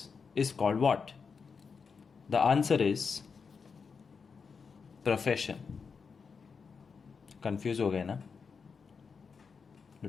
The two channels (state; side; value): quieter; right; 5.5 dB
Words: is called what? The answer is profession. Confused हो गए ना?